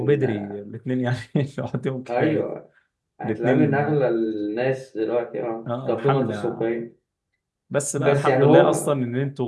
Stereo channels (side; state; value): both; identical; correlation 1.00